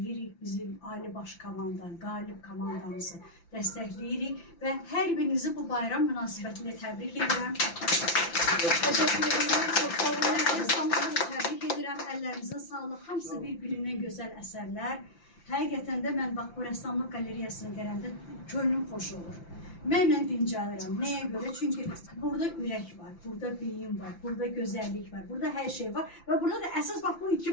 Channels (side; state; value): right; late; 5.9 ms